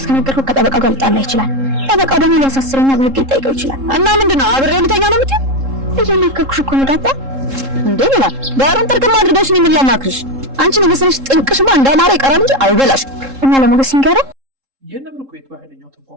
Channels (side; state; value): left; late; 3.7 ms